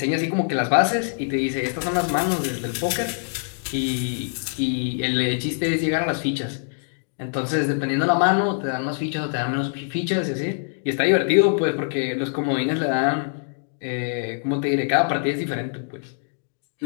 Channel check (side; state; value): right; silent; digital silence